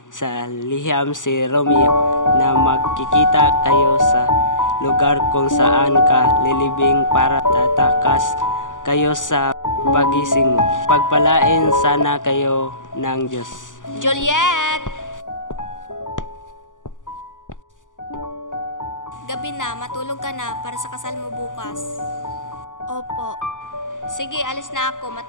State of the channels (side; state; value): right; late; 0.87 ms